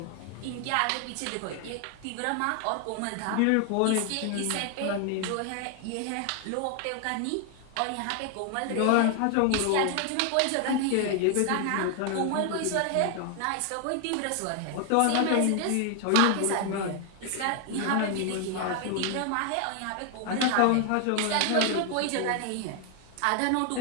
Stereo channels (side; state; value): both; different; correlation 0.00